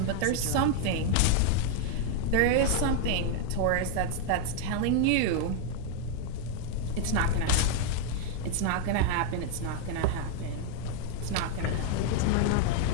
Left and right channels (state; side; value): different; both; correlation 0.00